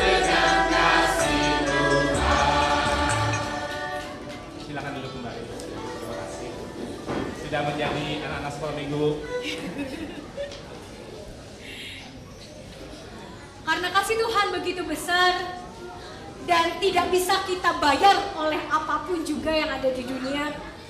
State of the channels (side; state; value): both; identical; correlation 1.00